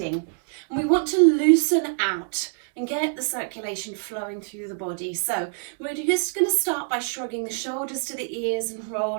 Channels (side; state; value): left; silent; digital silence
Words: And we want to loosen out and get the circulation flowing through the body. So we're just going to start by shrugging the shoulders to the ears and